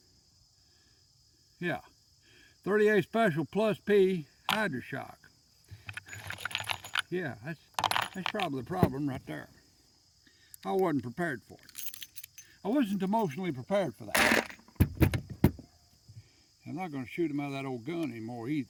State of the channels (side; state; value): both; identical; correlation 1.00